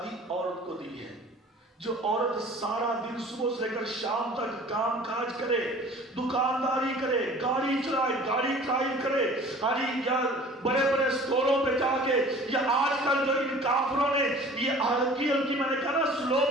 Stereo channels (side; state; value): both; normal; correlation 0.46